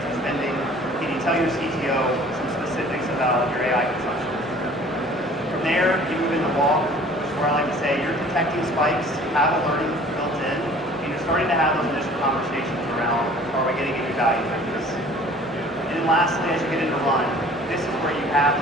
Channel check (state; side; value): normal; both; correlation 0.50